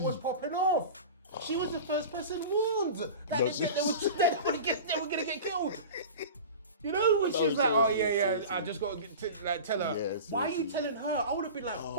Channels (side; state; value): both; inverted; correlation -0.34